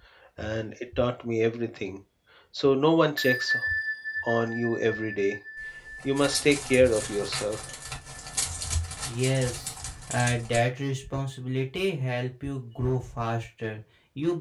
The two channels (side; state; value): both; identical; correlation 1.00